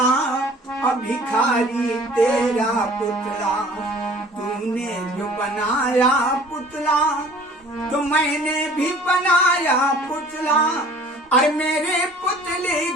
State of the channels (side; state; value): both; normal; correlation 0.50